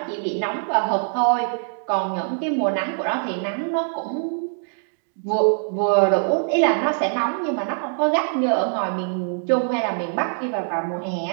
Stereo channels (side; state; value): left; silent; digital silence